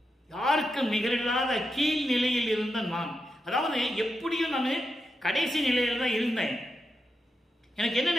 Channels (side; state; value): both; normal; correlation 0.86